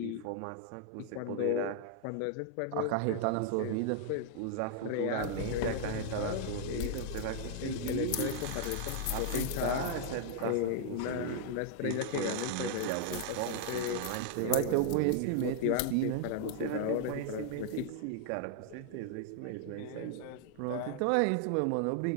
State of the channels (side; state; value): both; different; correlation 0.00